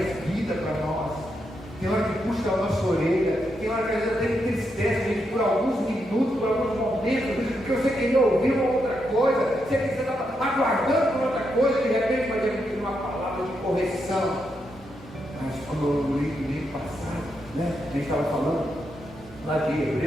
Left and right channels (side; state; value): both; normal; correlation 0.82